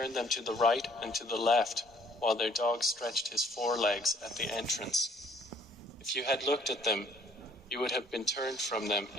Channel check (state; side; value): normal; both; correlation 0.59